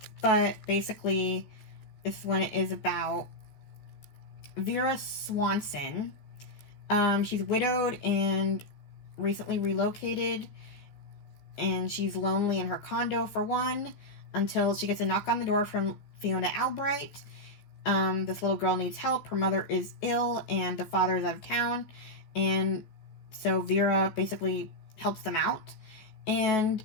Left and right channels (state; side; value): late; right; 14 ms